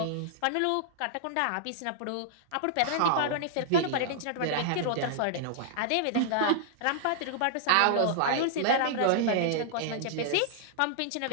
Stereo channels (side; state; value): both; different; correlation -0.01